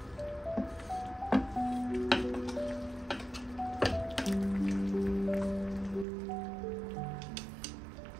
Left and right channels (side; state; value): left; drops out; at 6.1 s